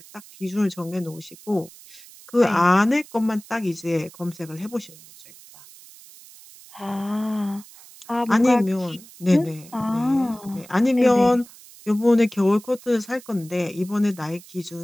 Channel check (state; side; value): noise; right; hiss, 21 dB below the sound